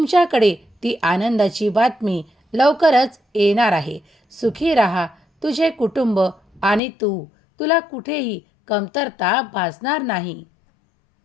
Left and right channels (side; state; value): right; drops out; at 6.8 s